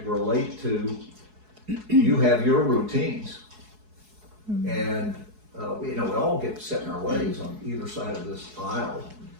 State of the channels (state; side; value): late; left; 4.7 ms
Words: relate to you have your routines, and we all get set in our ways on either side of this aisle.